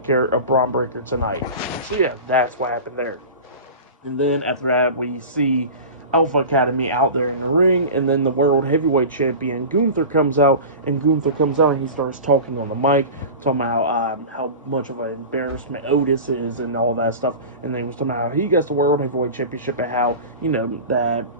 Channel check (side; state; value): both; inverted; correlation -0.32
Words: care of Braun Breaker tonight. So yeah, that's what happened there. And then after that, we see Alpha Academy out there in the ring, and then the World Heavyweight Champion Gunther comes out, and he starts talking on the mic, talking about how much of an embarrassment Otis is and all that stuff, and then he was talking about how he gets the World Heavyweight Championship and how, that